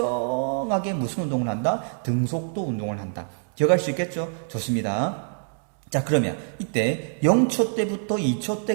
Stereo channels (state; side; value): silent; left; digital silence